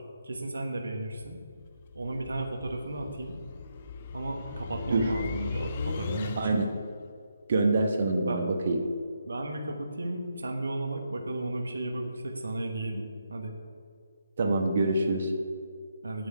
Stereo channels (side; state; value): both; inverted; correlation -0.81